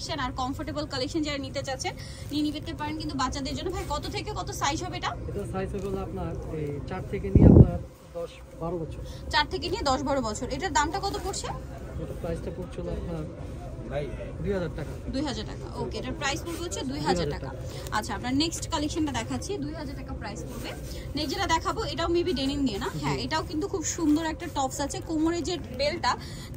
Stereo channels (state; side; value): identical; both; correlation 1.00